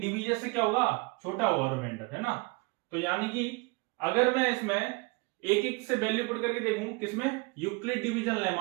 डिवीजर से क्या होगा, छोटा होगा रिमाइंडर, है ना। तो यानी कि अगर मैं इसमें एक एक से वैल्यू पुट करके देखूं, किसमें, यूक्लिड डिवीजन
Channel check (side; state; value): left; quieter; 27.4 dB